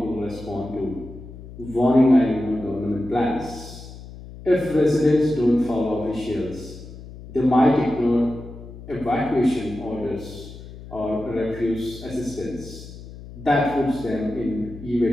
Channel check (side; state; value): left; noise; hum, 15 dB below the sound